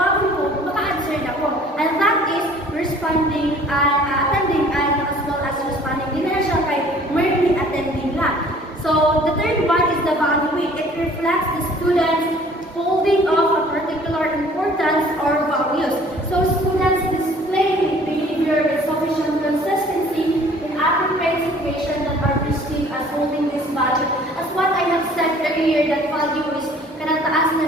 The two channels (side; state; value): both; normal; correlation 0.53